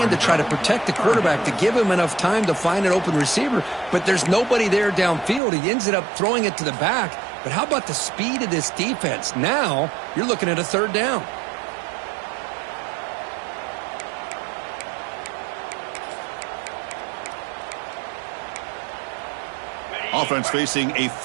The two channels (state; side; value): drops out; left; at 5.4 s